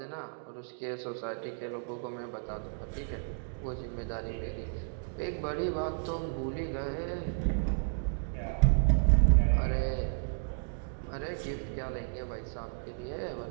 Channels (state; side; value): silent; left; digital silence